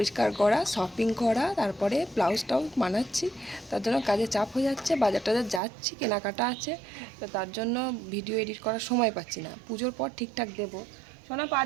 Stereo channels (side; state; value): left; drops out; at 5.6 s